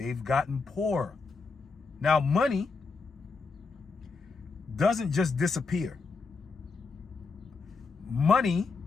gotten poorer. Now, money doesn't just disappear. Money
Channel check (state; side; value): quieter; right; 4.5 dB